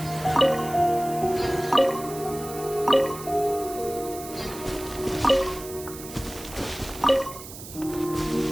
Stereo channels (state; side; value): noise; right; hiss, 14 dB below the sound